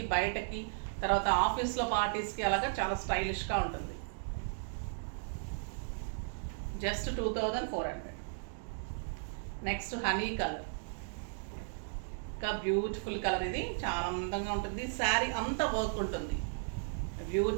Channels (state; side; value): silent; left; digital silence